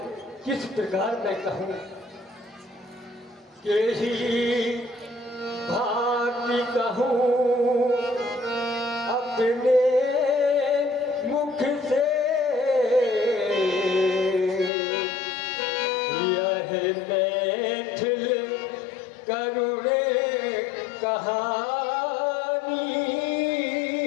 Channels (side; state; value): right; drops out; at 14.7 s